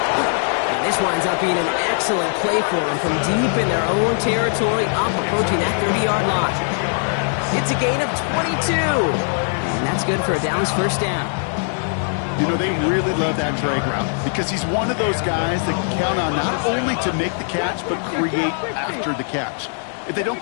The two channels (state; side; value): silent; right; 59 dB below the other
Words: And this winds up being an excellent play for them from deep in their own territory, up approaching that 30-yard line. It's a gain of 22. And that's good for a Dallas first down. You know, they really love that drag route because he's one of those guys that can count on not only to make the catch, but create after the catch. If they don't